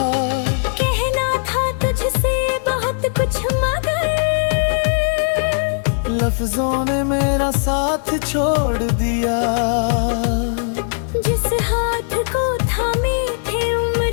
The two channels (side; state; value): right; silent; digital silence